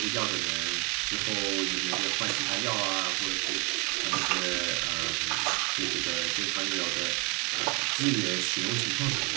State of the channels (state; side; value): quieter; left; 30.0 dB